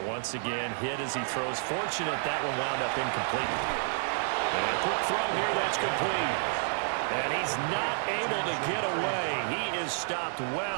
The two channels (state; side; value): silent; left; 58 dB below the other